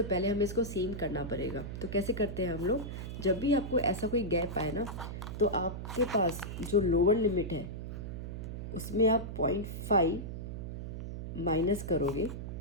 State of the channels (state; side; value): noise; right; hum, 7 dB below the sound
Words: पहले हमें इसको सेम करना पड़ेगा। तो कैसे करते हैं हम लोग, जब भी आपको ऐसा कोई गैप आए ना, तो आपके पास जो लोअर लिमिट है उसमें आप 0.5 माइनस करोगे